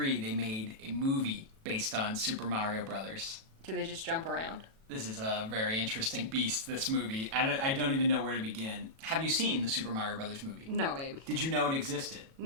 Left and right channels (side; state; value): left; late; 37 ms